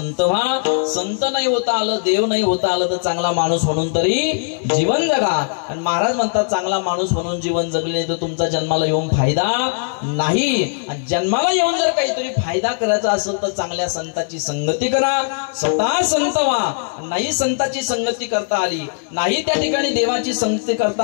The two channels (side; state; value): right; silent; digital silence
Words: व्हा. संत नाही होता आलं, देव नाही होता आलं तर चांगला माणूस म्हणून तरी जीवन जगा. आणि महाराज म्हणतात चांगला माणूस म्हणून जीवन जगले तर तुमचा जन्माला येऊन फायदा नाही. आणि जन्माला येऊन जर काहीतरी फायदा करायचा असेल तर चांगल्या संताची संगती करा, स्वतः संत व्हा. नाही संताची संगती करता आली, नाही त्या ठिकाणी देवाची संगती करता